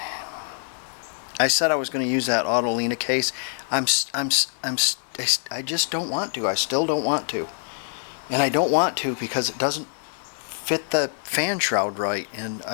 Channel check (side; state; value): right; silent; digital silence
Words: said I was going to use that Autolina case. I just don't want to. I still don't want to, and I don't want to because it doesn't fit the fan shroud right, and